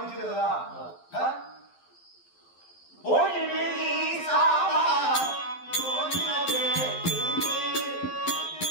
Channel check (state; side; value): late; right; 11 ms